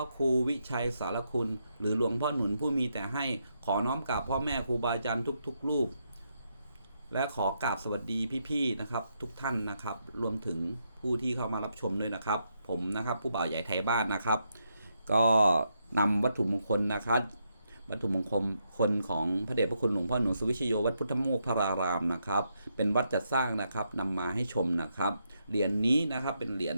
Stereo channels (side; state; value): both; inverted; correlation -0.80